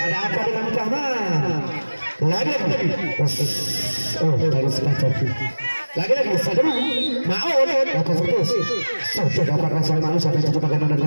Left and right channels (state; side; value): inverted; both; correlation -1.00